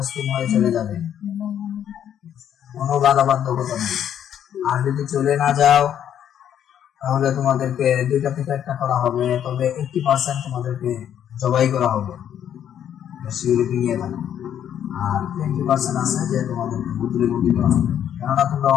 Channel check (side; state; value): right; quieter; 9.8 dB